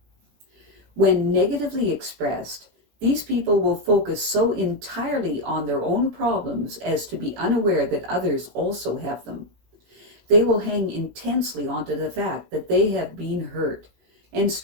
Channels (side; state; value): left; late; 18 ms